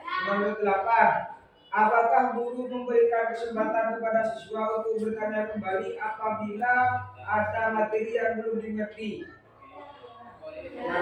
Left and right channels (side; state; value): both; identical; correlation 1.00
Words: Nomor 8. Apakah guru memberikan kesempatan kepada siswa untuk bertanya kembali apabila ada materi yang belum dimengerti?